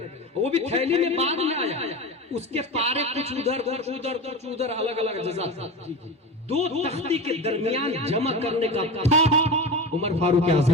वो भी थैली में बाद में आया, उसके पारे कुछ उधर कुछ उधर कुछ उधर, अलग अलग जजा था। दो तख्ती के दरमियान जमा करने का था उमर फारूक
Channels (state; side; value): normal; both; correlation 0.26